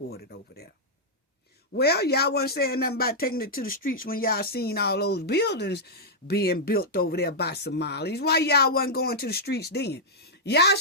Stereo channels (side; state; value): both; normal; correlation -0.06